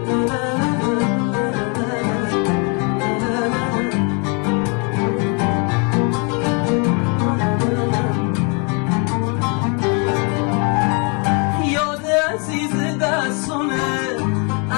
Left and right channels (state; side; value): quieter; right; 34.9 dB